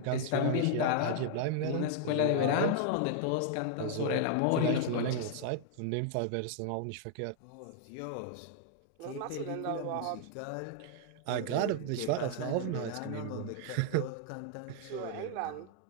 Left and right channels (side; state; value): both; different; correlation 0.00